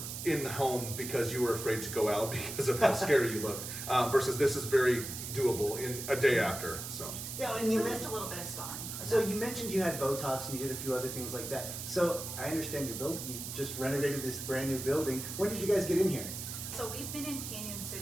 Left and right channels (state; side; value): noise; right; hiss, 7 dB below the sound